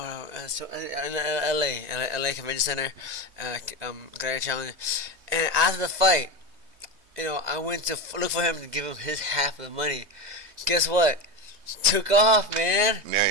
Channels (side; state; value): left; late; 3.2 ms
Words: in LA Convention Center, Gladiator Challenge, and after the fight, I went to look for him to give him his half of the money. Guess what? Took off, man.